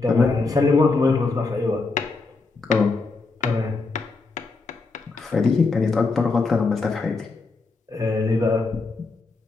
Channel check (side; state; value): right; quieter; 3.9 dB